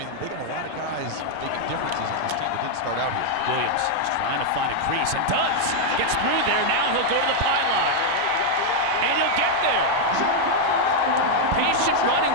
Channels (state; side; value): different; both; correlation 0.00